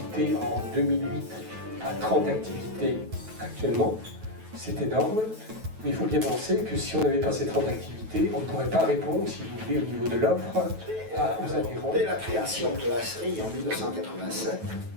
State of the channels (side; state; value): left; late; 9.2 ms